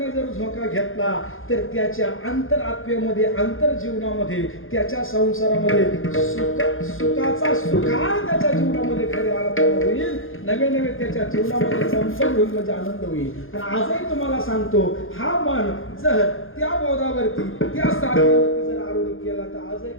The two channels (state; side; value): late; right; 0.59 ms